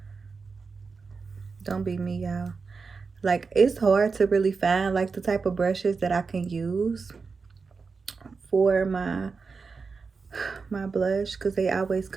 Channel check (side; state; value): left; quieter; 4.8 dB